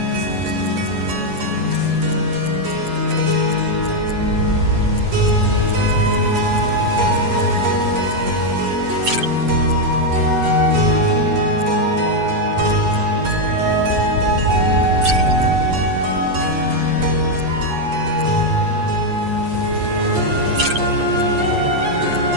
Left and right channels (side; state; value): left; late; 8.2 ms